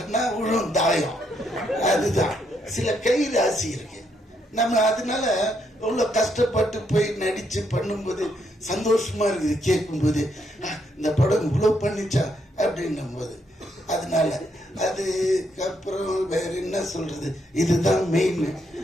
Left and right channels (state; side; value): normal; both; correlation 0.76